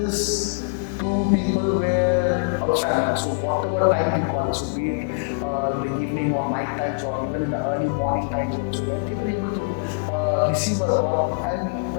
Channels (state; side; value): quieter; right; 37.1 dB